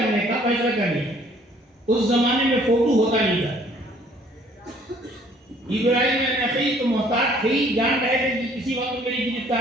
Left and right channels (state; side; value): normal; both; correlation 0.59